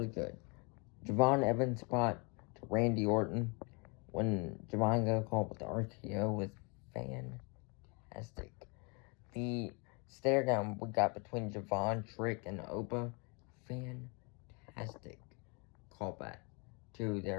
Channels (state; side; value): quieter; right; 32.4 dB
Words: good. Javon Evans spot to Randy Orton when Javon got called with the RKO was fantastic. The stare down we got between Javon, Trick, and Oba, fantastic callback to